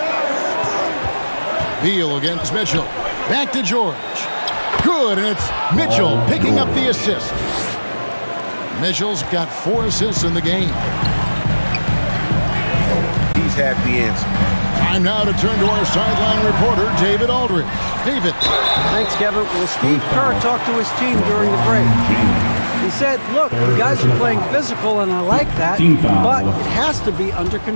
Beal against Mitchell. Back to George. Good, and it's Mitchell picking up the assist. Mitchell's got 4 assists in the game. He's had the answer. Time now to turn to our sideline reporter, David Aldridge. David. Thanks, Kevin. Well, Steve Kerr talked to his team during the break. He said, look, you guys are playing physical, and I like that, but it has to be under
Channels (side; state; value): both; inverted; correlation -1.00